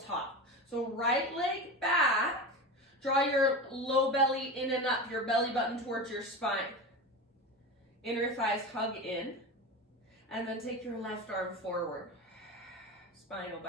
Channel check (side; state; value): both; normal; correlation 0.26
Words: So right leg back, draw your low belly in and up, your belly button towards your spine. Inner thighs hug in, and then take your left arm forward. Spinal